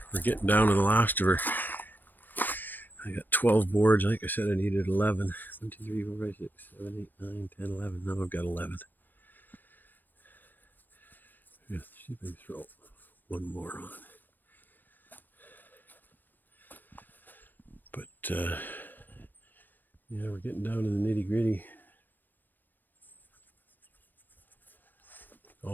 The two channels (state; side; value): late; right; 0.091 ms